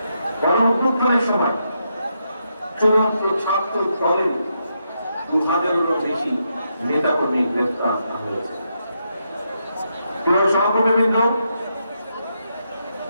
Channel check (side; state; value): both; inverted; correlation -0.81